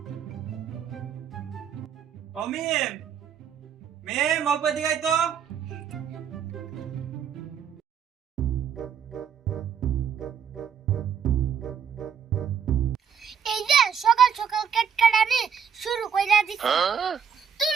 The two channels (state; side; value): quieter; left; 7.5 dB